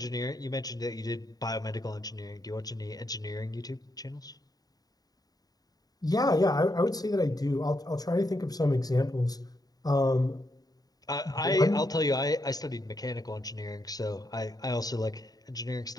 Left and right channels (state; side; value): late; right; 0.18 ms